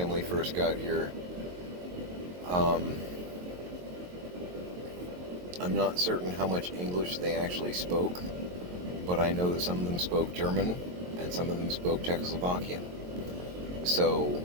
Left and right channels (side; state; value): left; late; 22 ms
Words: first got here, I'm not certain how much English they actually spoke, but I know that some of them spoke German and some of them spoke Czechoslovakian. So,